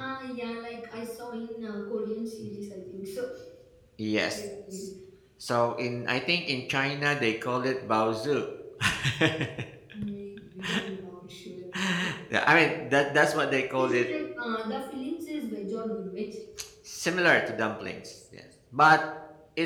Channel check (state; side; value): identical; both; correlation 1.00